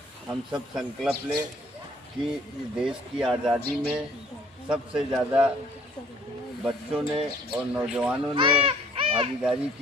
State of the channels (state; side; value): normal; both; correlation 0.57